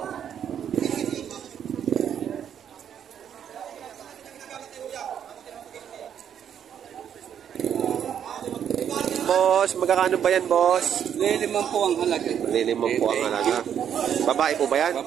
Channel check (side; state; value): left; quieter; 8.9 dB